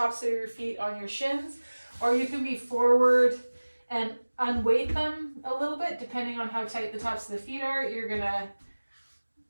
of your feet on your shins, or you can be forward and unweight them a little bit depending on how tight the tops of the feet are. You're gonna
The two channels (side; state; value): both; inverted; correlation -1.00